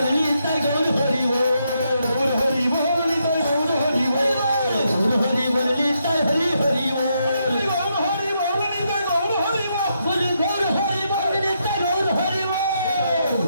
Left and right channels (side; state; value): both; inverted; correlation -0.79